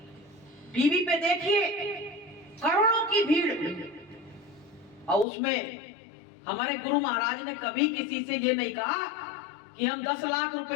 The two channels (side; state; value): right; drops out; at 5.2 s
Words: टीवी पे देखिए करोड़ों की भीड़, और उसमें हमारे गुरु महाराज ने कभी किसी से ये नहीं कहा कि हम 10 लाख